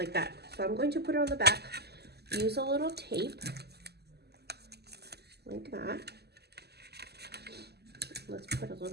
that. So I'm going to put it on the back. Use a little tape like that. Let's put a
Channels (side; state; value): left; late; 0.47 ms